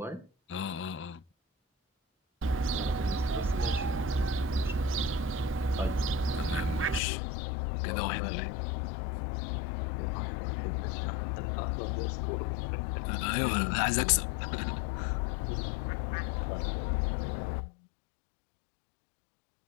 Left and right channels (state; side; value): drops out; right; at 7.0 s